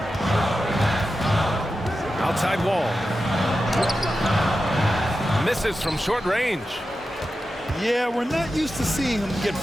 Outside Wall. Misses from short range. Yeah, we're not used to seeing him get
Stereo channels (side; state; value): both; normal; correlation 0.91